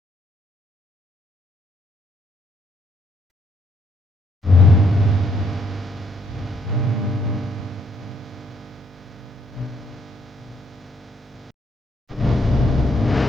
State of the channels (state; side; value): normal; both; correlation 0.72